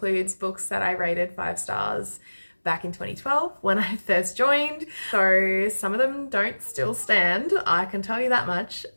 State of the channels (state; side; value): inverted; both; correlation -1.00